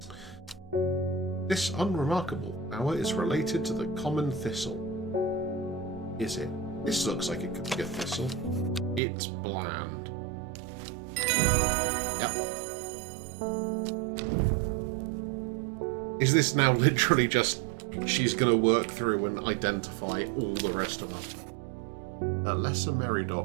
This unremarkable flower is related to the common thistle. Is it? This looks like it could be a thistle. It's bland. Yep. Is this now literally just she's going to work through and identify all the rest of them? Lesser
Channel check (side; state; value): left; drops out; at 9.0 s